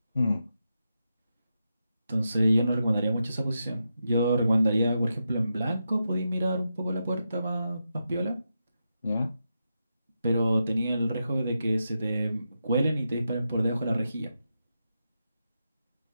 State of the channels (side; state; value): both; inverted; correlation -0.86